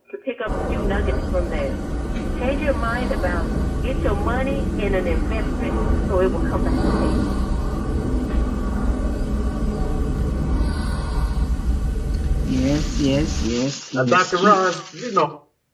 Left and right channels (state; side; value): identical; both; correlation 1.00